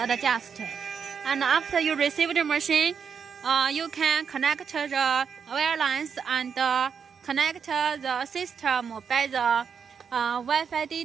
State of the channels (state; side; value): quieter; left; 6.6 dB